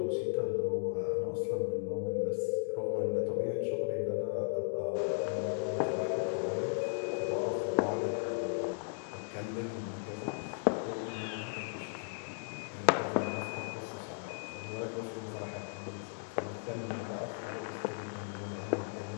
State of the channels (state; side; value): silent; right; digital silence